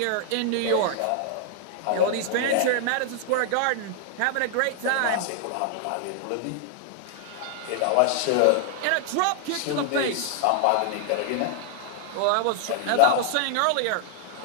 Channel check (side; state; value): both; different; correlation 0.00